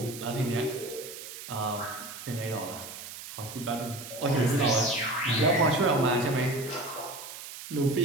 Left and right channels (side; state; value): right; noise; hiss, 11 dB below the sound